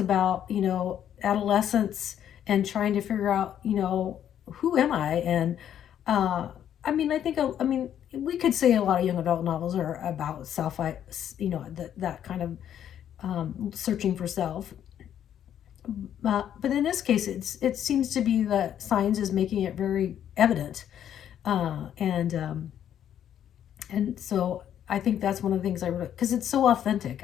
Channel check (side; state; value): right; quieter; 10.0 dB